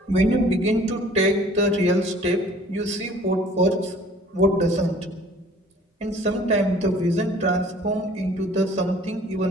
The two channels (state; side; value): normal; both; correlation 0.52